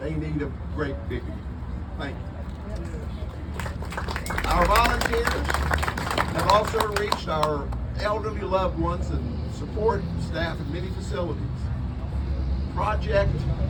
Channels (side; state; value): both; identical; correlation 1.00